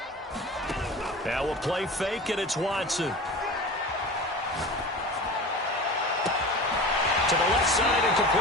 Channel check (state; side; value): normal; both; correlation 0.34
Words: Now we'll play fake, and it's Watson. To the left side and